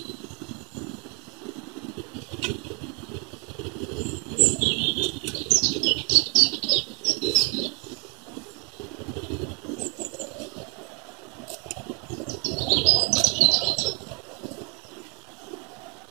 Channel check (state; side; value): quieter; left; 33.1 dB